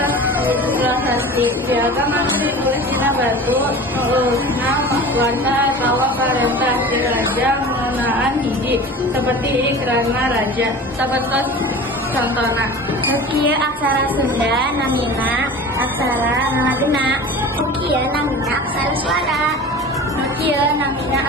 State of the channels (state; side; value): normal; both; correlation 0.36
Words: ilustrasi. Piagam anu ditulis dina batu neusina warta atawa parentah ti raja ngeunaan hiji seperti ikrarna raja. Sapertos contohna kieu aksara Sunda namina aksara Ngagena. Kieu namina aksara suara. Kieu namina